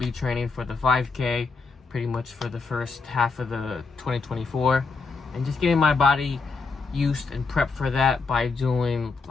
training, for the 5K pretty much for the first half of the 2024, and just getting my body used and prepped for that by doing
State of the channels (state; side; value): quieter; right; 4.4 dB